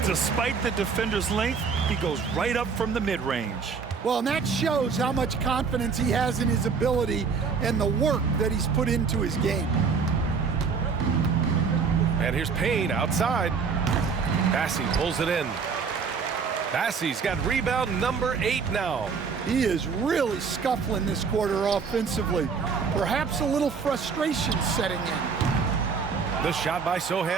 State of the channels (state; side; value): quieter; left; 5.5 dB